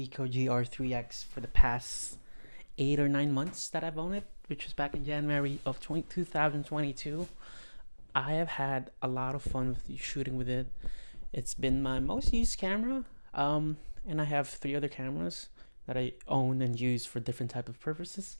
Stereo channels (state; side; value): inverted; both; correlation -1.00